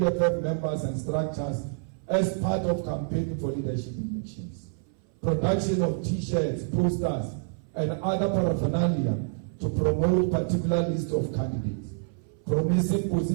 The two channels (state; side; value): silent; left; 59 dB below the other